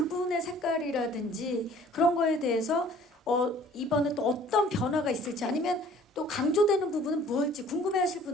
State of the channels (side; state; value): both; normal; correlation 0.53